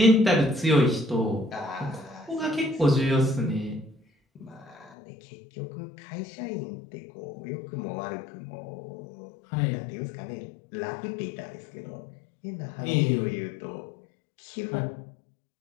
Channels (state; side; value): drops out; right; at 5.0 s